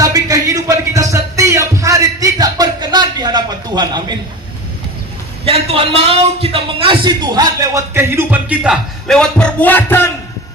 kehidupan kita setiap hari tidak berkenan di hadapan Tuhan. Amin. Yang Tuhan mau kita mengasihi Tuhan lewat kehidupan kita, lewat perbuatan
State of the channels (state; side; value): normal; both; correlation 0.31